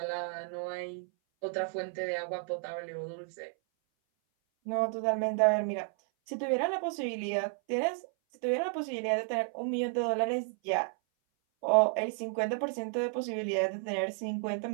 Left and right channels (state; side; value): silent; left; 56 dB below the other